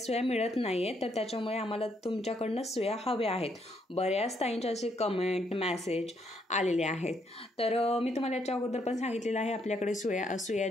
मिळत नाही आहे, तर त्याच्यामुळे आम्हाला तुमच्याकडनं सुया हव्या आहेत। बऱ्याच ताईंचे असे कमेंट मेसेज आलेले आहेत। तर मी तुम्हाला याच्या अगोदर पण सांगितलेलं आहे आपल्याकडे सुया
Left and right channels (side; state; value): both; normal; correlation 0.73